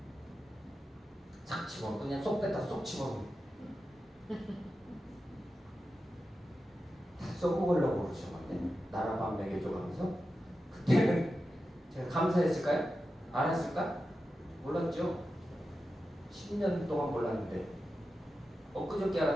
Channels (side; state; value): both; normal; correlation 0.91